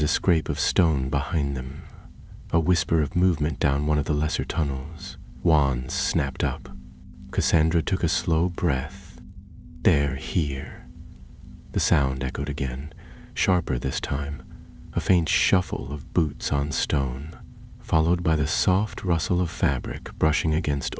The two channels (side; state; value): both; identical; correlation 1.00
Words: a scrape of stone behind them, a whisper of movement down one of the lesser tunnels. Wands snapped up. Cassandra took a slow breath. They're here. The sound echoed again, sharper this time, a faint shuffle of boots on stone, followed by the soft rustle of fabric brushing against